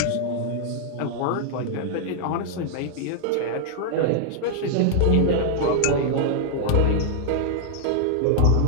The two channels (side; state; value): both; different; correlation 0.00